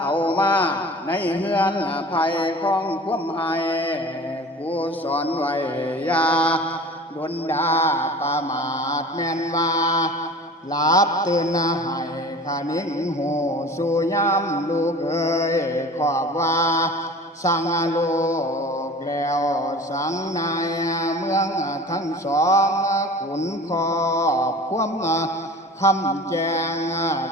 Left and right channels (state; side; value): normal; both; correlation 0.40